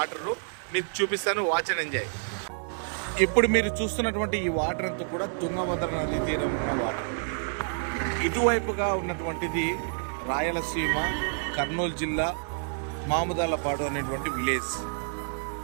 మీకు చూపిస్తాను, వాచ్ అండ్ ఎంజాయ్. ఇప్పుడు మీరు చూస్తున్నటువంటి ఈ వాటర్ అంతా కూడా తుంగభద్ర నది తీరం ఉన్న వాటర్. ఇటువైపుగా ఉన్నటువంటిది రాయలసీమ కర్నూలు జిల్లా మాముదాలపాడు అనేటువంటి విలేజ్.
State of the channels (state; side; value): silent; left; digital silence